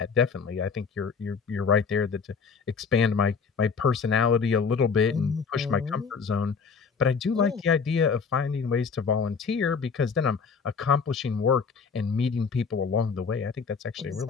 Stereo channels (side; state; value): right; quieter; 5.5 dB